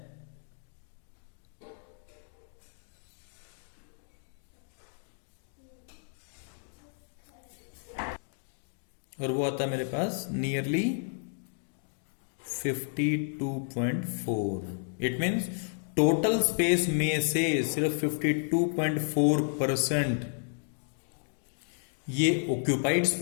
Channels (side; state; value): right; silent; digital silence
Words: और वो आता है मेरे पास nearly 52.4। It means total space में से सिर्फ 52.4% ये ऑक्यूपाइड